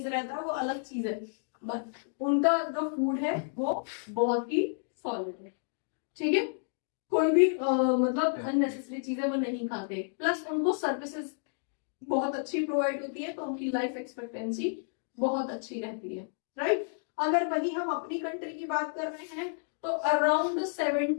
रहता है, वो अलग चीज है, बट उनका जो फूड है वो बहुत ही सॉलिड है, ठीक है। कोई भी मतलब अननेसेसरी चीजें वो नहीं खाते, प्लस उनको सर्विसेज बहुत अच्छी प्रोवाइड होती है, तो उनकी लाइफ एक्सपेक्टेंसी बहुत अच्छी रहती है, राइट। अगर वही हम अपनी कंट्री की बात कर रहे हैं तो अराउंड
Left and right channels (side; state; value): right; silent; digital silence